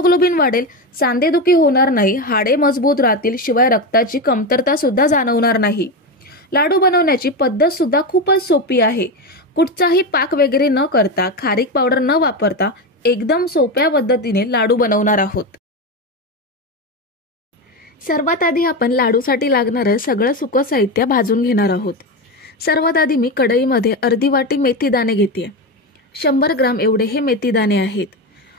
वाढेल, सांधेदुखी होणार नाही, हाडे मजबूत राहतील, शिवाय रक्ताची कमतरता सुद्धा जाणवणार नाही। लाडू बनवण्याची पद्धत सुद्धा खूपच सोपी आहे। कुठचाही पाक वगैरे न करता, खारीक पावडर न वापरता एकदम सोप्या पद्धतीने लाडू बनवणार आहोत। सर्वात आधी आपण लाडूसाठी लागणारे सगळं सुकं साहित्य भाजून घेणार आहोत। सर्वात आधी मी कढईमध्ये अर्धी वाटी मेथी दाणे घेते। 100 ग्राम एवढे हे मेथी दाणे आहेत।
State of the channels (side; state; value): both; normal; correlation 0.16